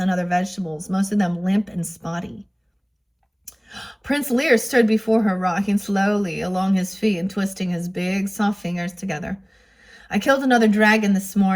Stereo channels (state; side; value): identical; both; correlation 1.00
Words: other vegetables, most of them limp and spotty. Prince Lear stood before her, rocking slowly along his feet and twisting his big, soft fingers together. I killed another dragon this